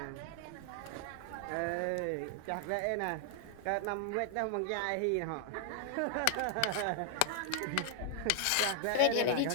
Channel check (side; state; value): both; different; correlation 0.00